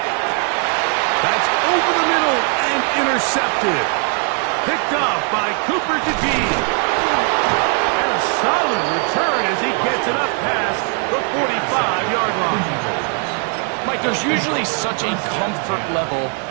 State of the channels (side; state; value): left; quieter; 39.9 dB